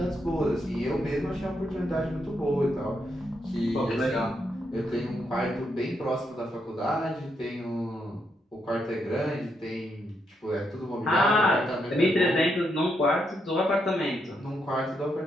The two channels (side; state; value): both; normal; correlation 0.79